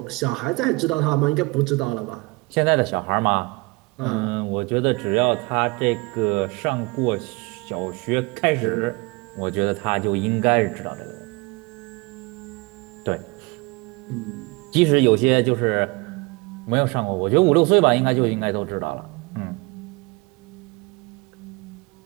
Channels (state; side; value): quieter; left; 25.9 dB